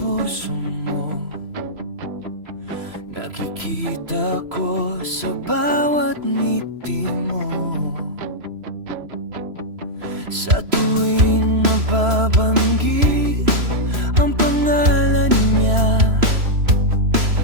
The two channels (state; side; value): late; left; 3.0 ms